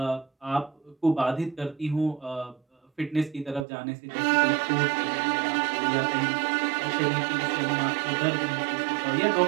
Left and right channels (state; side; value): drops out; left; at 3.7 s